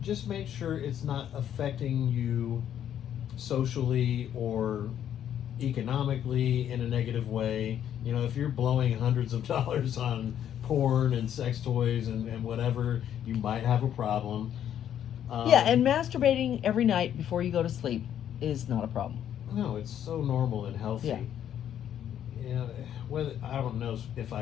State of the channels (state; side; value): quieter; right; 10.1 dB